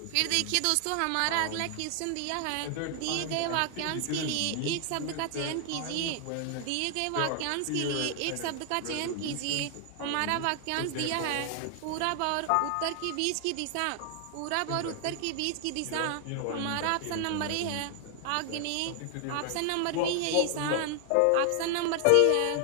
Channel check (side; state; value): both; different; correlation 0.00